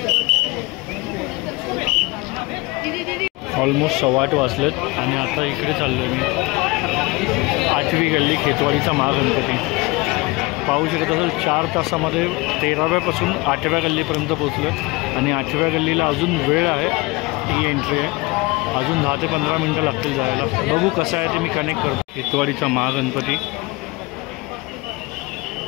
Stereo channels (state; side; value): quieter; right; 24.3 dB